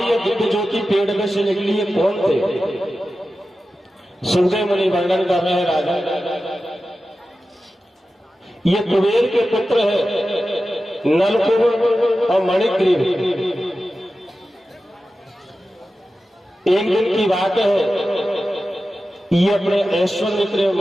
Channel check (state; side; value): normal; both; correlation 0.93